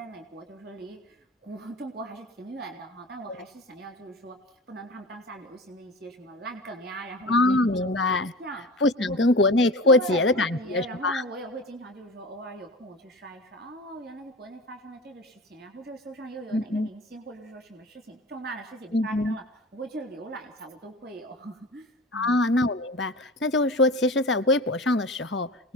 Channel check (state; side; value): normal; both; correlation 0.34